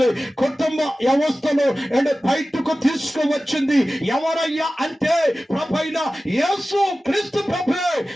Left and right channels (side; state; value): both; normal; correlation 0.96